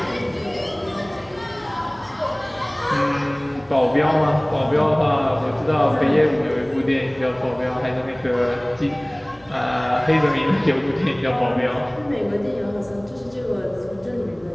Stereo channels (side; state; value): left; noise; hum, 27 dB below the sound